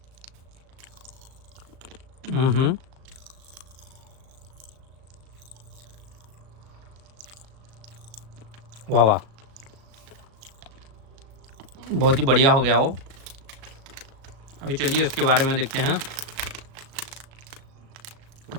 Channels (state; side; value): late; left; 36 ms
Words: वाह वाह, बहुत ही बढ़िया हो गया वो। अभी चलिए इसके बारे में देखते हैं।